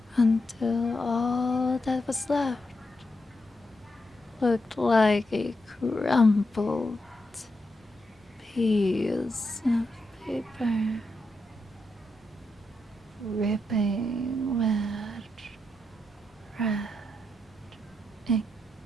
until all that was left looked like a crumpled piece of paper, dripping with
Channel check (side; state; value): both; normal; correlation 0.84